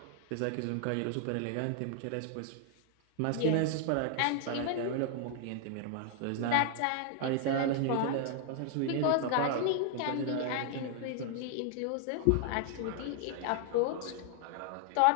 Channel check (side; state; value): both; different; correlation 0.00